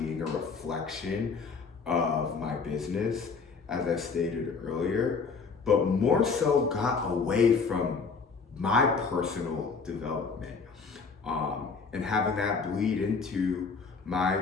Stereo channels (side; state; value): right; quieter; 5.0 dB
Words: a reflection of my business, as I stated earlier, but more so got away from my personal development and having that bleed into my